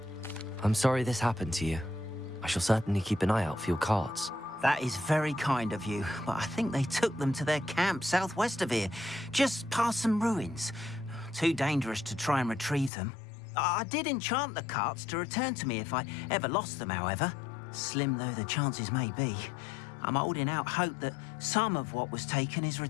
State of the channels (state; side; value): drops out; right; at 12.9 s